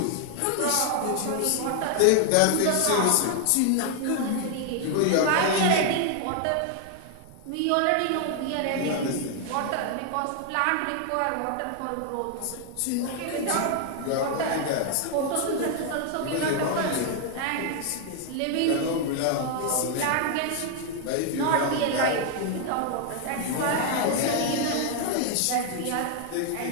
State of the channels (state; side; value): different; both; correlation 0.00